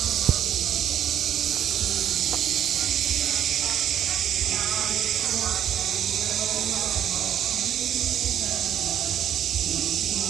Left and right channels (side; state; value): left; quieter; 10.1 dB